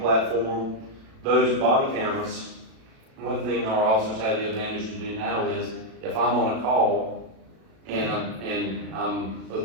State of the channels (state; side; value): late; left; 36 ms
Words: Those body cameras, one thing our officers have the advantage to do now is, if I'm on a call and I'm